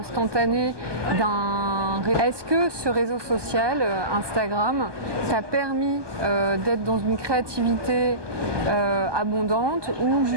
Est-ce que ce réseau social, Instagram, t'a permis d'être dans une créativité abondante ou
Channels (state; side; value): late; left; 1.2 ms